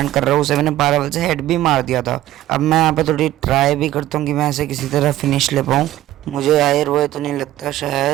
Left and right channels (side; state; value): left; quieter; 14.3 dB